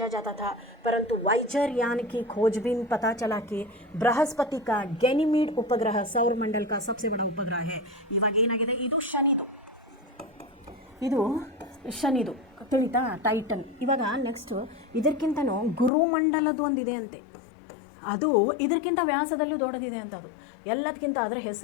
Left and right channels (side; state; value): right; drops out; at 15.9 s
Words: जाता था, परंतु वाइजर यान की खोजबीन पता चला कि बृहस्पति का गैनीमीड उपग्रह सौरमंडल का सबसे बड़ा उपग्रह है. ಇವಾಗ ಏನಾಗಿದೆ, ಇದು ಶನಿದು ತಿಳಿತಾ, ಟೈಟನ್. ಇವಾಗ ನೆಕ್ಸ್ಟ್ ಇದಕ್ಕಿಂತನೂ ಗುರುಮಂಡಲದ್ದು ಒಂದಿದೆ ಅಂತೆ, ಅದು ಇದಕ್ಕಿಂತ ವ್ಯಾಸದಲ್ಲೂ ದೊಡ್ಡದಿದೆ ಅಂತ. ಅದು ಎಲ್ಲದಕ್ಕಿಂತ ಅದರ